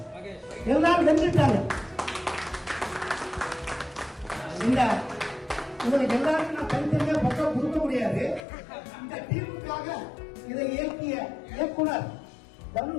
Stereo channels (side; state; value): right; drops out; at 8.5 s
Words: எல்லாரும் வென்றுட்டாங்க. இந்த உங்களுக்கு எல்லாருக்கும் நான் தனித்தனியா பக்கம் கொடுக்க முடியாது. இந்த டீமுக்காக இதை இயக்கிய இயக்குனர்